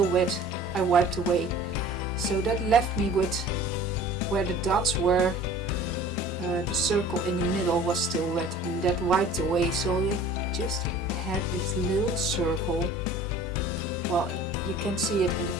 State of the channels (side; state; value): both; normal; correlation 0.46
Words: wet I wiped away. So that left me with where the dots were, the circle in the middle was still wet, and that wiped away, so it just had this little circle. Well, you can see it in the